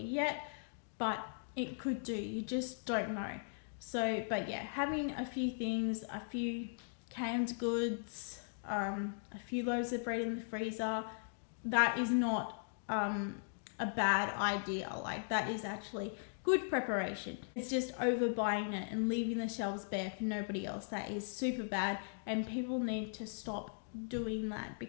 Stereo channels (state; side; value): silent; right; digital silence